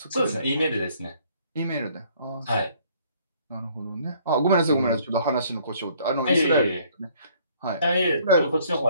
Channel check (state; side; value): inverted; both; correlation -0.61